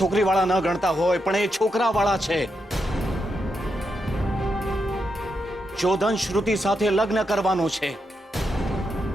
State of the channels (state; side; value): normal; both; correlation 0.84